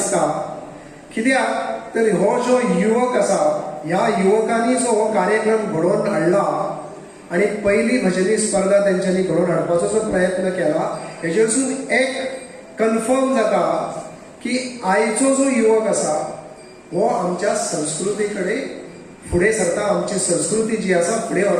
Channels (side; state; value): both; identical; correlation 1.00